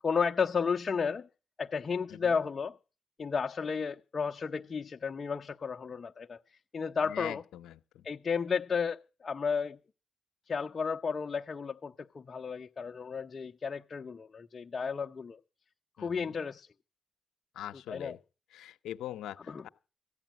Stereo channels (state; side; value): quieter; right; 5.5 dB